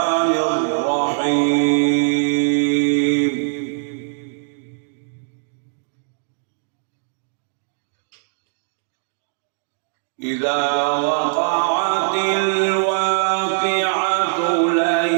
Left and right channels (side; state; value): left; silent; digital silence